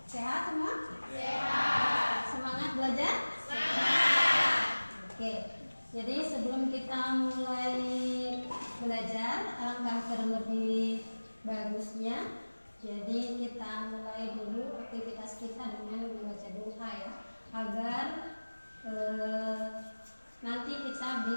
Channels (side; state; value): both; inverted; correlation -1.00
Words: Sehat semua? Sehat. Semangat belajar? Semangat. Oke. Jadi sebelum kita mulai belajar, alangkah terlebih bagusnya. Jadi kita mulai dulu aktivitas kita dengan membaca doa ya, agar nanti kita